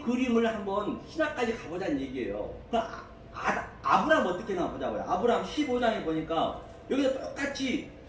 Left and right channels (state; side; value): identical; both; correlation 1.00